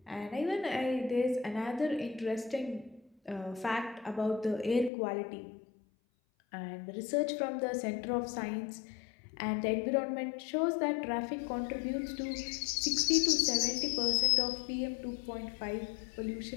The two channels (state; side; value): drops out; right; at 4.9 s